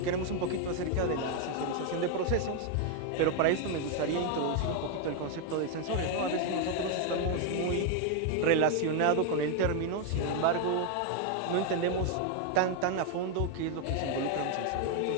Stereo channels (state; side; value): different; both; correlation 0.00